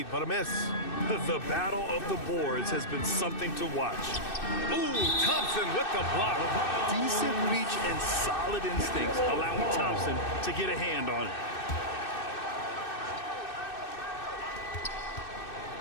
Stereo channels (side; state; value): right; late; 2.6 ms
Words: but a miss. The battle of the boards has been something to watch. Ooh, Thompson with the block. Decent reach and solid instincts, allowing Thompson to get a hand on it.